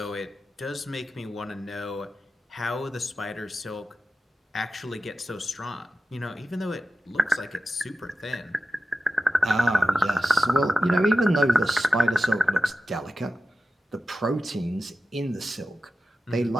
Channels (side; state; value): both; normal; correlation 0.93